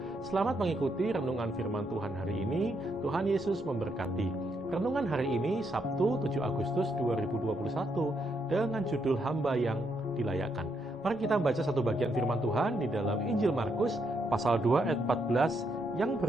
Selamat mengikuti renungan firman Tuhan hari ini. Tuhan Yesus memberkati. Renungan hari ini Sabtu 7 Agustus 2021 dengan judul Hamba yang Dilayakkan. Mari kita baca satu bagian firman Tuhan di dalam Injil Markus pasal 2 ayat 14 yang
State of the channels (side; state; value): both; normal; correlation 0.77